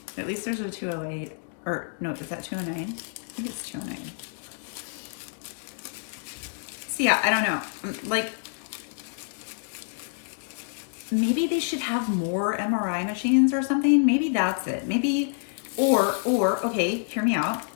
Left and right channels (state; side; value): silent; right; digital silence